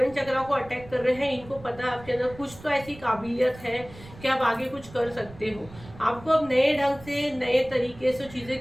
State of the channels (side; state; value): right; noise; rumble, 19 dB below the sound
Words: चक्रा को अटैक कर रहे हैं, इनको पता है आपके अंदर कुछ तो ऐसी काबिलियत है कि आप आगे कुछ कर सकते हो। आपको अब नए ढंग से, नए तरीके से